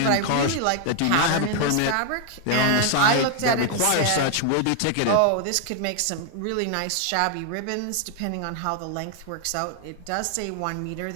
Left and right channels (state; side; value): different; both; correlation 0.00